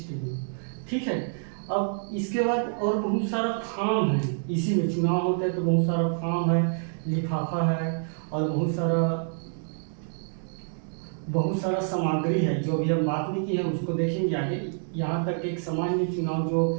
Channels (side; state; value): left; silent; digital silence